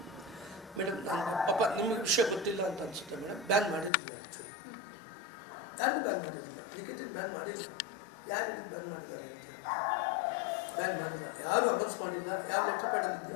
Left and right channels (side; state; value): right; drops out; at 3.9 s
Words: ಮೇಡಮ್, ನನಗೆ ಪಾಪ ನಿಮಗೆ ವಿಷಯ ಗೊತ್ತಿಲ್ಲ ಅಂತ ಅನ್ಸುತ್ತೆ ಮೇಡಮ್. ಬ್ಯಾನ್ ಮಾಡಿರಲಿಲ್ಲ ಆ್ಯಕ್ಚುಲಿ, ಯಾರಿಗೂ ಬ್ಯಾನ್ ಮಾಡಿರಲಿಲ್ಲ. ಲಿಖಿತಕ್ಕೆ ಬ್ಯಾನ್ ಮಾಡಿಲ್ಲ. ಯಾರು ಹೇಳಿದ್ದು ಬ್ಯಾನ್ ಮಾಡಿದ್ದಾರೆ ಅಂತ ಹೇಳಿ? ಬ್ಯಾನ್ ಮಾಡಿಲ್ಲ, ಯಾರು ಅನೌನ್ಸ್ ಮಾಡಿಲ್ಲ. ಯಾವ ಲೆಟರ್ ಪ್ಯಾಡಲ್ಲಿ